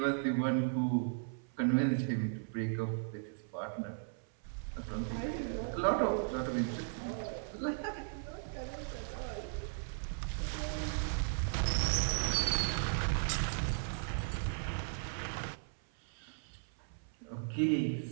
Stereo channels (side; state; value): left; silent; 53 dB below the other